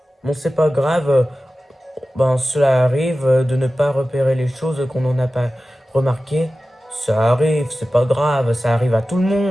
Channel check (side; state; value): both; normal; correlation 0.95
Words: Bon, c'est pas grave. Ben, cela arrive de ne pas repérer les choses qu'on n'en a pas remarquées. Ça arrive, c'est pas grave, ça arrive à tout le